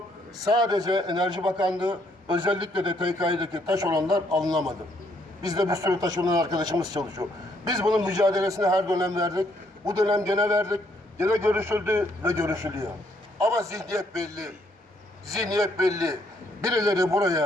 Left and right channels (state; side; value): normal; both; correlation 0.70